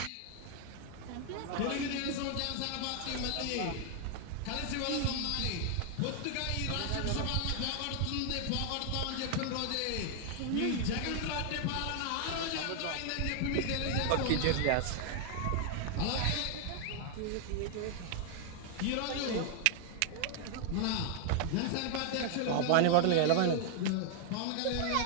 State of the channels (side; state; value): both; different; correlation 0.00